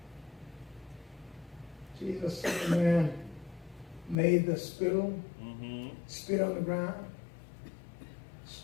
Jesus said, the man made the spittle, Mm-hmm. spit on the ground,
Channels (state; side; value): drops out; right; at 4.2 s